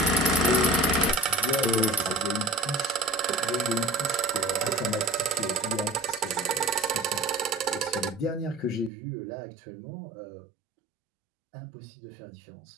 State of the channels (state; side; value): drops out; left; at 8.9 s